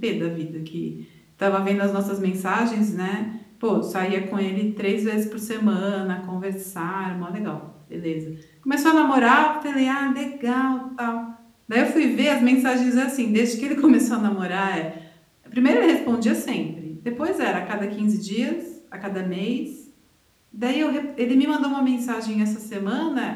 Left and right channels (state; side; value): identical; both; correlation 1.00